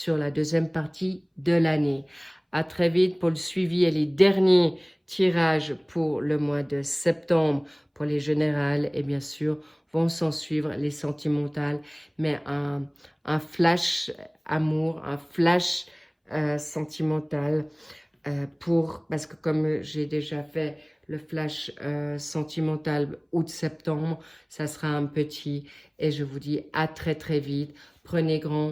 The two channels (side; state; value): both; identical; correlation 1.00